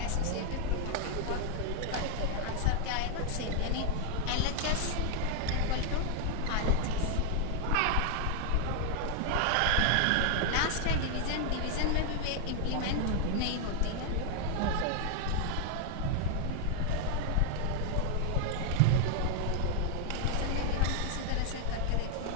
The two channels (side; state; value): both; different; correlation 0.00